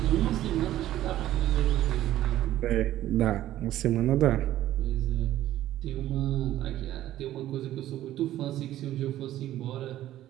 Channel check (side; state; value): left; quieter; 13.5 dB